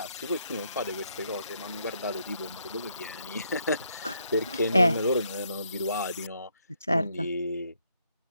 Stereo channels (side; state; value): both; inverted; correlation -0.74